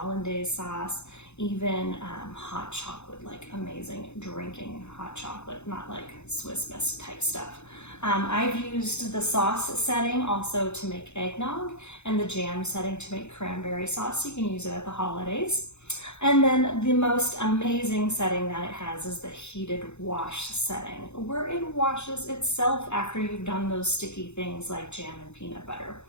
sauce, even hot chocolate, like amazing drinking hot chocolate, not like Swiss Miss type stuff. I've used the sauce setting also to make eggnog and the jam setting to make cranberry sauce. You can use it at the holidays. And then the most amazing setting that it has is the heated wash setting, where it washes itself after you've done those sticky things like jam and peanut butter.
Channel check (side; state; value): right; late; 0.82 ms